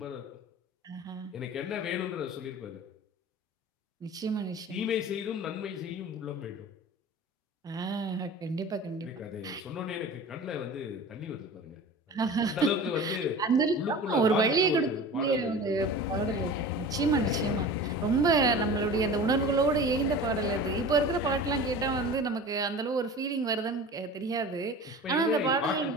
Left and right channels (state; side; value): normal; both; correlation 0.36